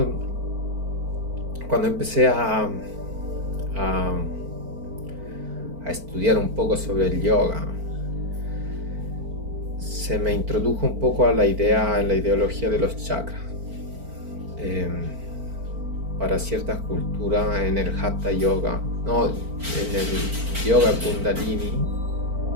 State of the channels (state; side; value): late; left; 4.4 ms